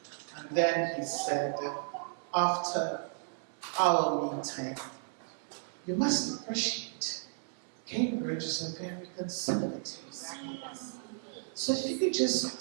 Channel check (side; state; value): left; silent; 55 dB below the other